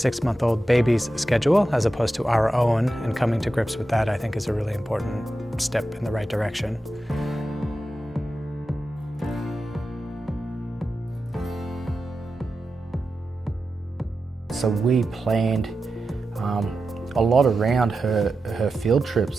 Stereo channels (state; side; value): normal; both; correlation 0.91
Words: baby's schedule as opposed to our own, and coming to grips with that I think is a really important step in the right direction. So we planned a lot around her field